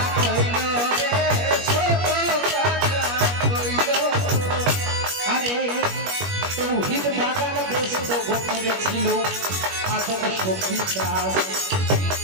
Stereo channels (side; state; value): left; late; 21 ms